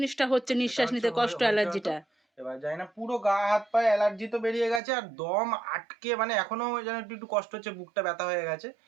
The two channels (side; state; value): left; drops out; at 4.8 s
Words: হচ্ছে, নিঃশ্বাস নিতে কষ্ট, অ্যালার্জিটা। এবার জানি না, পুরো গা হাত পায়ে অ্যালার্জি তো বেরিয়ে গেছে, আর দম আটকে, মানে এখনো যেন একটু কষ্ট হচ্ছে, বুকটা ব্যথা হয়ে গেছে,